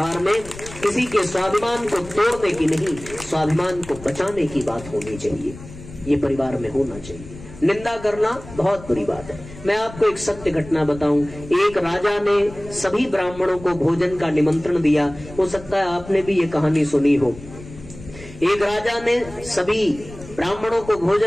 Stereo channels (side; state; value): left; noise; rumble, 16 dB below the sound